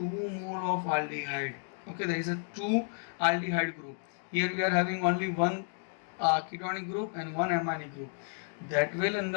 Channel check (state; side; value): silent; right; 56 dB below the other